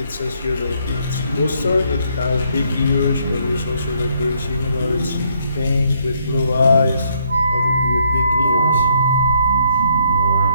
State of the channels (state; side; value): inverted; both; correlation -0.70